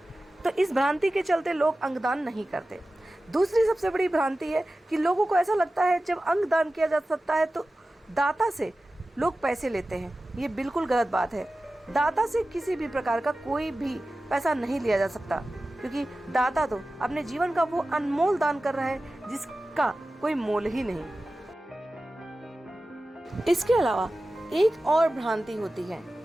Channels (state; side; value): normal; both; correlation 0.95